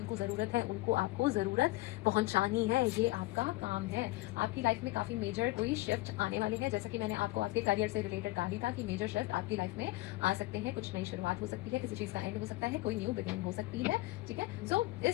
ज़रूरत है उनको आपको ज़रूरत पहुंचानी है, ये आपका काम है। आपकी लाइफ में काफ़ी मेजर कोई शिफ्ट आने वाली है, जैसे कि मैंने आपको आपके करियर से रिलेटेड कहा ही था कि मेजर शिफ्ट आपकी लाइफ में आ सकते हैं। कुछ नई शुरुआत हो सकती है, किसी चीज़ का एंड हो सकता है, कोई न्यू बिगिनिंग हो सकती है, ठीक है। सो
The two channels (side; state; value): right; quieter; 19.6 dB